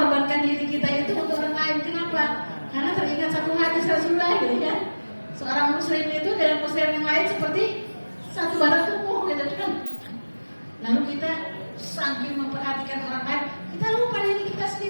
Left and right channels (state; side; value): inverted; both; correlation -1.00